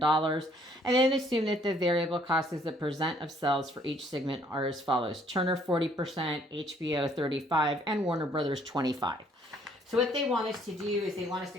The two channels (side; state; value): both; normal; correlation 0.64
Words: And then assume that the variable cost as a percent of sales for each segment are as follows: Turner 40%, HBO 35%, and Warner Brothers 25%. So what they want us to do is they want us